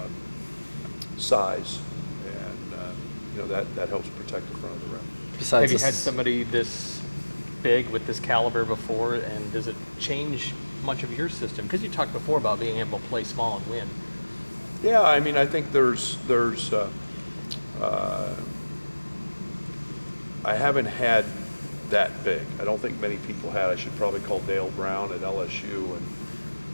size, and that helps protect the front of the rim. Have you had somebody this big with this caliber before, and does it change much of your system? Because you talked before about being able to play small and win. Yeah, I mean, I think there's I haven't had that big. I don't think many people had. I should probably call Dale Brown at LSU and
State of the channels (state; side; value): inverted; both; correlation -1.00